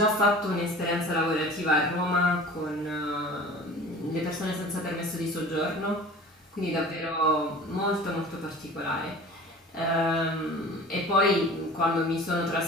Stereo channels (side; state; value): both; normal; correlation 0.41